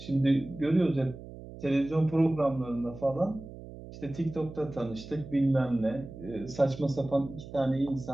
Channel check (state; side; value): noise; right; hum, 14 dB below the sound